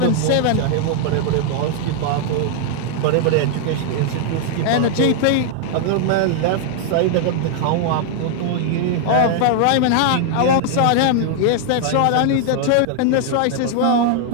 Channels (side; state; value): both; different; correlation 0.00